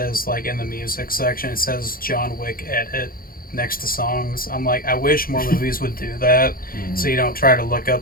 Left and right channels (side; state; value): right; late; 0.42 ms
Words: like, in the music section, it says John Wick edit next to songs. I'm like, I wish more movies would do that, so you don't try to look